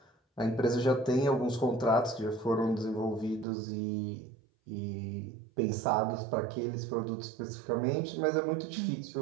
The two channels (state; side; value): drops out; left; at 3.5 s